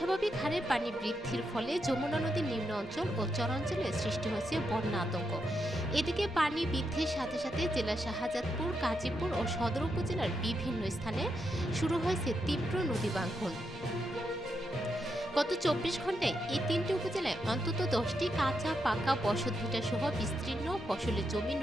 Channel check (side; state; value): both; normal; correlation 0.83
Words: হারে পানি বৃদ্ধির ফলে যমুনা নদীর নিম্ন অঞ্চল ও চরাঞ্চলে সৃষ্টি হয়েছে বন্যা আতঙ্ক। এদিকে পানি বৃদ্ধির সাথে সাথে জেলা শাহজাদপুর, কাজীপুর ও সদর উপজেলার বিভিন্ন স্থানে শুরু হয়েছে তীব্র নদী ভাঙ্গন। গত ২৪ ঘন্টায় এই ৩টি উপজেলায় অন্তত ১০টি কাঁচা পাকা বসতভিটা সহ বিস্তীর্ণ ফসলের জমি